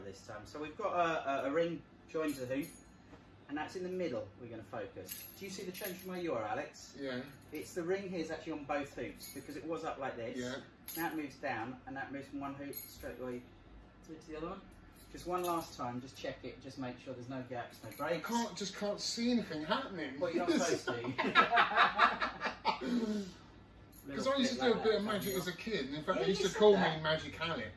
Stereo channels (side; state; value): both; identical; correlation 1.00